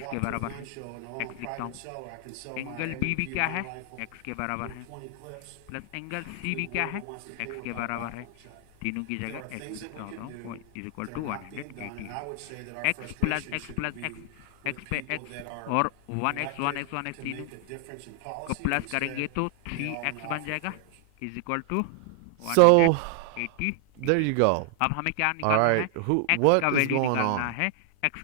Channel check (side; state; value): both; different; correlation 0.00